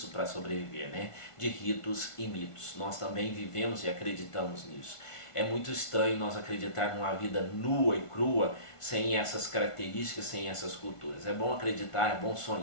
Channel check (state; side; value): late; right; 1.5 ms